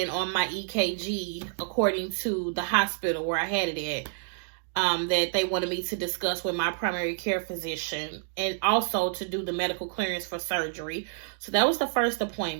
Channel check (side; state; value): left; silent; digital silence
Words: on my EKG, according to the hospital where I had it at, that they wanted me to discuss with my primary care physician, and also to do the medical clearance for surgery. So that was the first